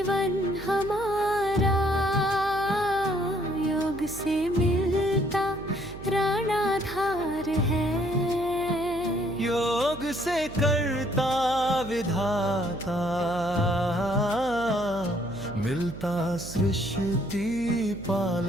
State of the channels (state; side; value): noise; right; hum, 14 dB below the sound